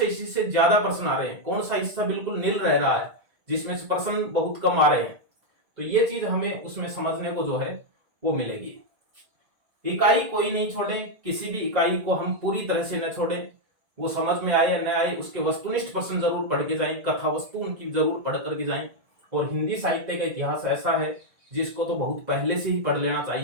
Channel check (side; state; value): left; late; 1.9 ms